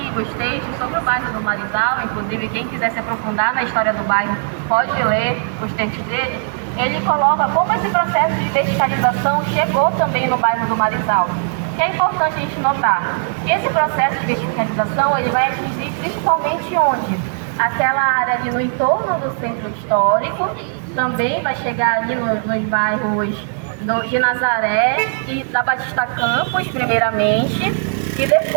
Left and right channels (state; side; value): silent; left; 67 dB below the other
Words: textos sobre o bairro do Marizal, inclusive quem quiser se aprofundar na história do bairro pode ler os textos dele. Ele coloca como esse processo de verticalização chegou também no bairro do Marizal. O que é importante a gente notar? Que esse processo de verticalização ele vai atingir principalmente onde? Aquela área ali no entorno do centro histórico, também vai chegar ali nos bairros de Nazaré e da Batista Campos, primeiramente, e